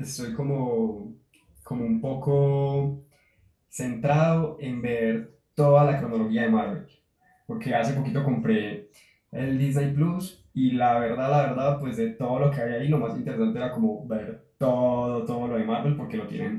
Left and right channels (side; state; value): both; identical; correlation 1.00